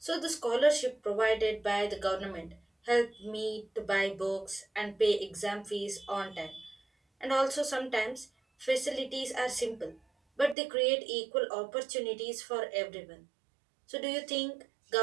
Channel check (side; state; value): left; drops out; at 10.6 s